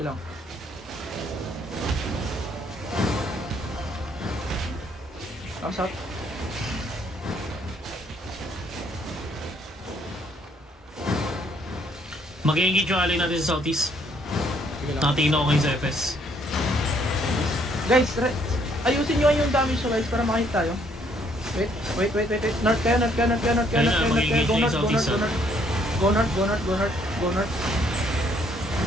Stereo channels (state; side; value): normal; both; correlation 0.67